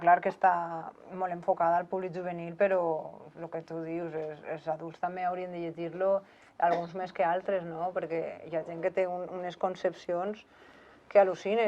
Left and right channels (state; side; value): identical; both; correlation 1.00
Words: clar que està molt enfocada al públic juvenil, però el que tu dius, els adults també haurien de llegir-lo, alguns més que altres, no? Perquè hi ha gent que té unes concepcions que